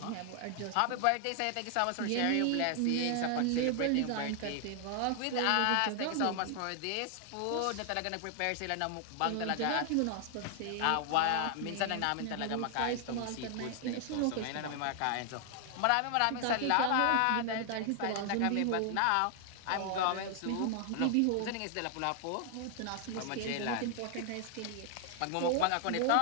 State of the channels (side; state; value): both; different; correlation 0.00